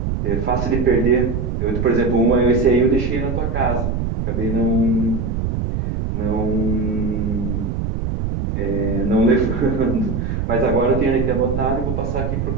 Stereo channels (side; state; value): right; noise; rumble, 2 dB below the sound